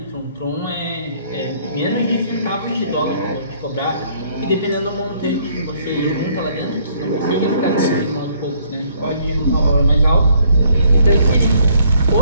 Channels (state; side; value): inverted; both; correlation -0.65